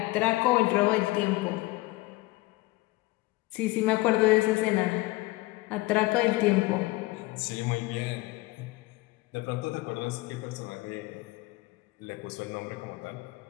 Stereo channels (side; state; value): right; quieter; 20.3 dB